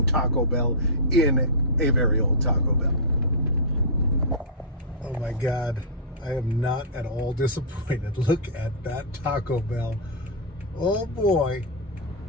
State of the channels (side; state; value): both; normal; correlation -0.15